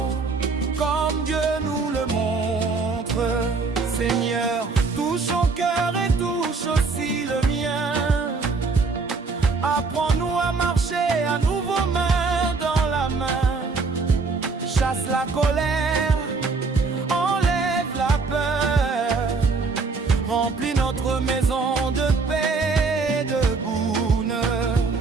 comme Dieu nous le montre. Seigneur, touche ton cœur et touche aussi le mien. Apprends-nous à marcher à nouveau main dans la main. Chasse la colère, enlève la peur, remplis notre maison de paix et de bonheur.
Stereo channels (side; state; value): left; quieter; 4.3 dB